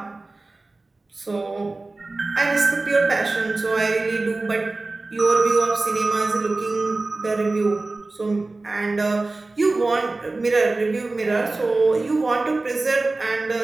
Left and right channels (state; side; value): quieter; left; 3.3 dB